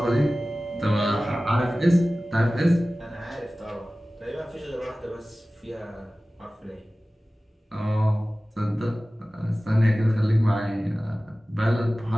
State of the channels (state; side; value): normal; both; correlation 0.97